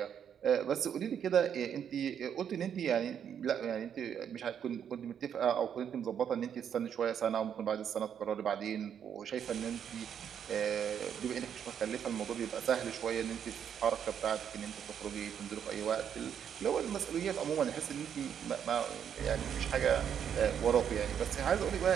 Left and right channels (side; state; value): left; quieter; 8.5 dB